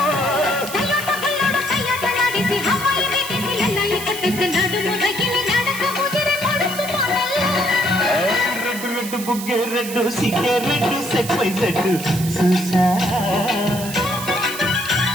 బుగ్గే రెడ్డు సిగ్గే రెడ్డు సెక్స్ వై సెడ్డు చూసా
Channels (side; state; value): right; noise; hiss, 9 dB below the sound